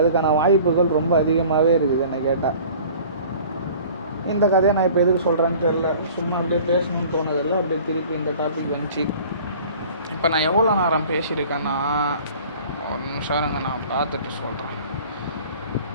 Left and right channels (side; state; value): both; inverted; correlation -0.47